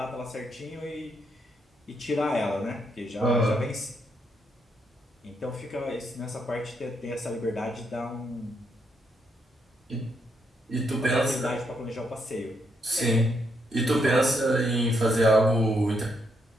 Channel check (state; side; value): normal; both; correlation 0.77